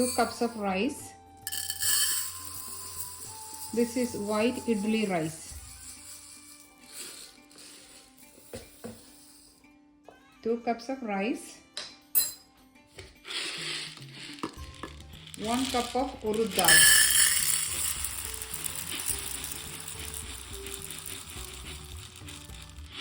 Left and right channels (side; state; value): both; identical; correlation 1.00